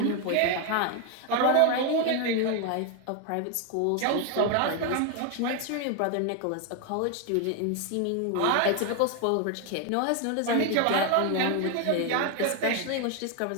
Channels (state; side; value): different; both; correlation 0.01